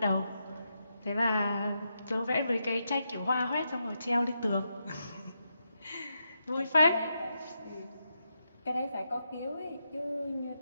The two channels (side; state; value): both; inverted; correlation -0.84